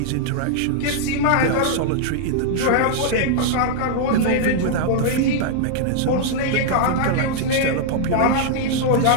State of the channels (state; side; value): different; both; correlation -0.01